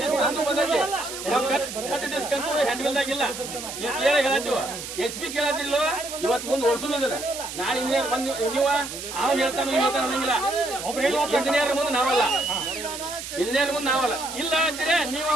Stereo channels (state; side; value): noise; right; hiss, 9 dB below the sound